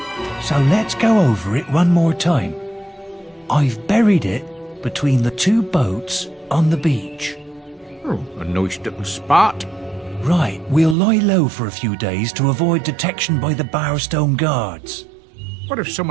so let's go over it one more time. I've buried it between the 2 boats on the beach. Oh, a nice little spot. Right, we'll lie low for a few days to avoid detection by the Barstone guards. What if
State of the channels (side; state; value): left; drops out; at 11.0 s